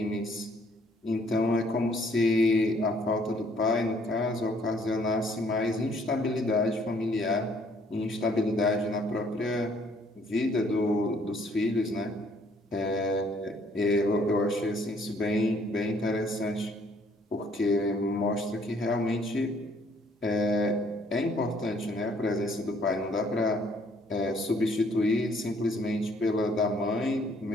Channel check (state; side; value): normal; both; correlation 0.63